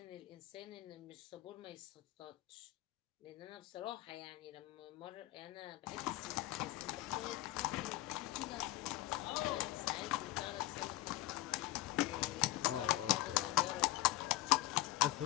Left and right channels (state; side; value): quieter; right; 16.6 dB